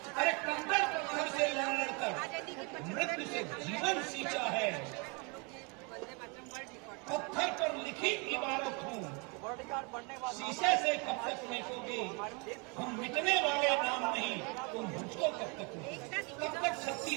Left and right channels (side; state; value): left; quieter; 32.2 dB